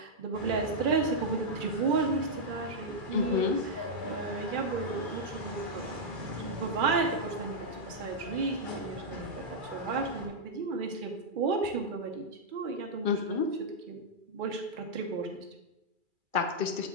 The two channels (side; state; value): left; late; 2.3 ms